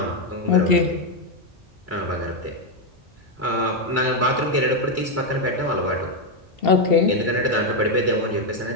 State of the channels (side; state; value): both; normal; correlation 0.04